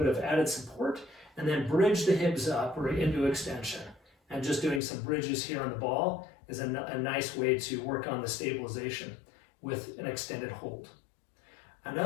of added support, and then bridge the hips up or into extension. And just doing some bridges here on the ball is a nice way to work on the stabilization with an extended hold.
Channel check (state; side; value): drops out; right; at 4.8 s